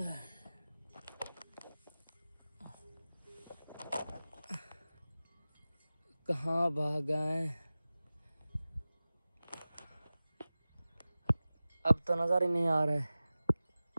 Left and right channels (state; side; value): inverted; both; correlation -0.97